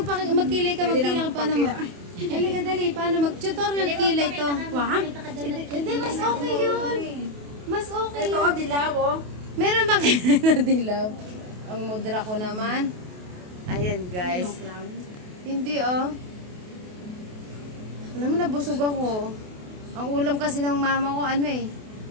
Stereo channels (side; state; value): left; late; 28 ms